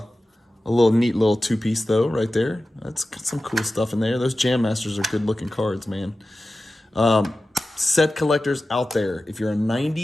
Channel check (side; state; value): both; normal; correlation 0.94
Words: neat little two-piece though, right there. That's got some cool stuff in there. Those Jam Masters are good-looking cards, man. Set collectors out there. If you're a